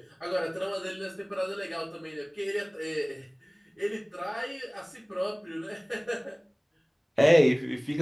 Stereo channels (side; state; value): both; identical; correlation 1.00